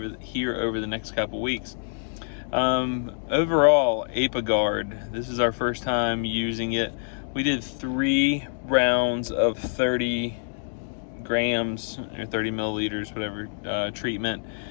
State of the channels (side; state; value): right; silent; digital silence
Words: the next couple weeks. Overall, ApiGuard, this is our first time using it. We did 3 rounds of 30 grams or 30 milliliters, whatever, treatment,